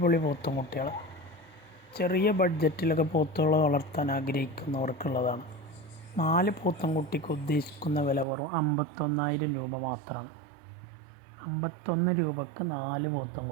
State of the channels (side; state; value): left; drops out; at 8.2 s